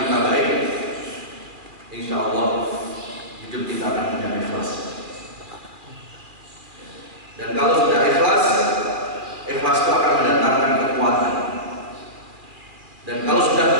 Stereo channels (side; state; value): left; late; 2.3 ms